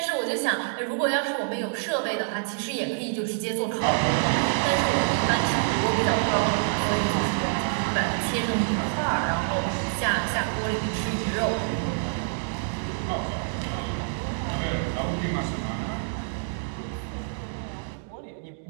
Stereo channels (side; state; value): left; silent; digital silence